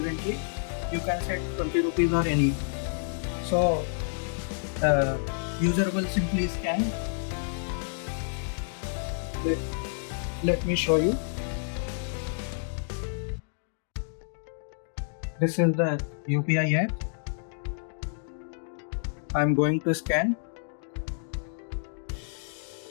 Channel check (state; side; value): silent; right; digital silence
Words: you can set 20 rupees or any. So user will simply scan. Let me show you. This is the UPI app. I'm going to scan.